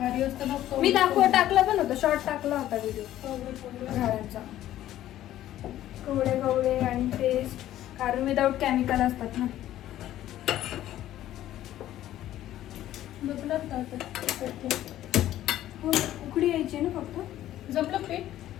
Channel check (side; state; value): right; quieter; 13.2 dB